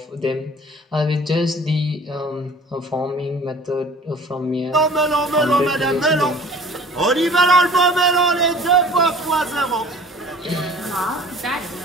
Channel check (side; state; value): both; normal; correlation 0.47